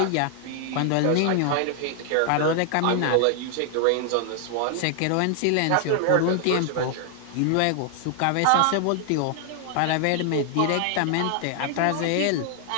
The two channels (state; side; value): different; both; correlation 0.00